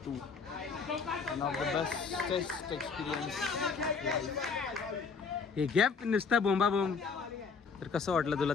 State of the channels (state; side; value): quieter; right; 5.2 dB